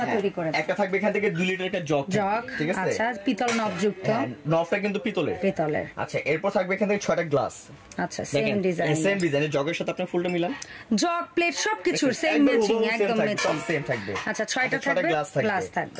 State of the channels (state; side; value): identical; both; correlation 1.00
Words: তৈরি করে। একটা থাকবে এখান থেকে 2 লিটার একটা জগ, ঠিক আছে? আচ্ছা, পিতল নব যুক্ত, নবটা কিন্তু পিতলের। আচ্ছা, এরপর থাকবে এখান থেকে 6টা গ্লাস। আচ্ছা, সেম ডিজাইনের জগের সাথে আপনার ফুলটা মিলান, জগ প্লেট সবকিছু সেম ম্যাচিং, একদম ম্যাচিং, সেম থাকবে। আচ্ছা, 6টা থাকবে, গ্লাস